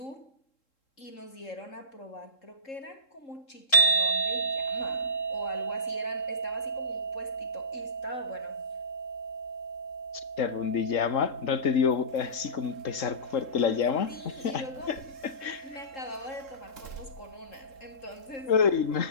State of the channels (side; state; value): right; late; 3.7 ms